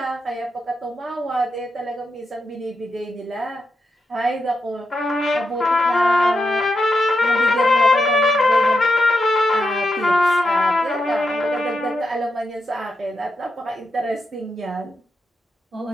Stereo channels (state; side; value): normal; both; correlation 0.85